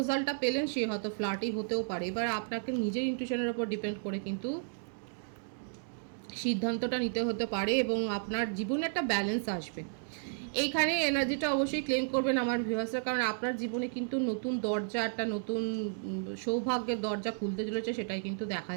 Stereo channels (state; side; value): silent; left; digital silence